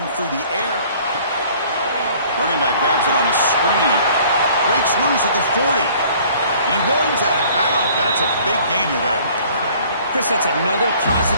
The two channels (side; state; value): both; inverted; correlation -0.54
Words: through the air. Running back grabs it on the screen. Breaks loose at the 40. He runs out of bounds. That's a big gainer there. Chris, that's another